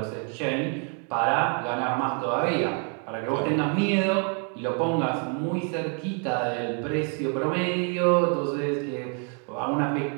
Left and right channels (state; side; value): quieter; left; 40.0 dB